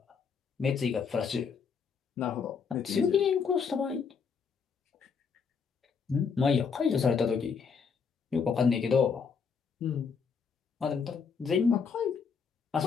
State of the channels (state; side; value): quieter; right; 5.9 dB